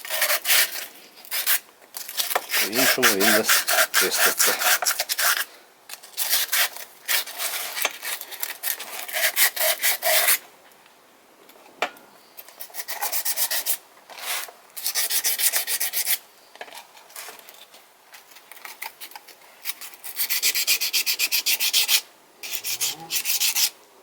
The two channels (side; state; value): both; identical; correlation 1.00